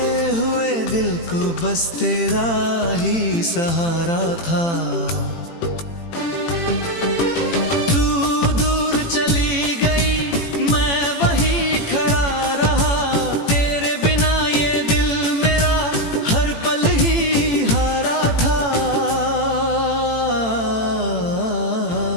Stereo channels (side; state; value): right; late; 18 ms